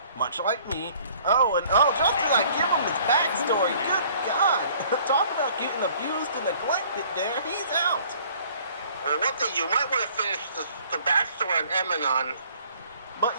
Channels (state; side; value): inverted; both; correlation -0.55